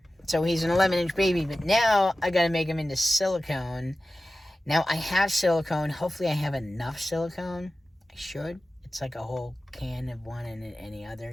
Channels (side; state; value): both; normal; correlation 0.95